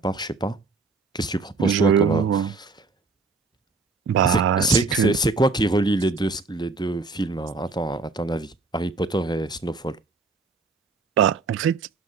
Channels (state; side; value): quieter; left; 4.0 dB